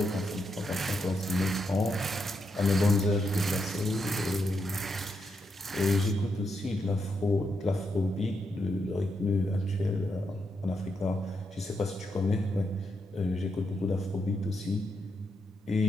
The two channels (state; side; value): normal; both; correlation 0.82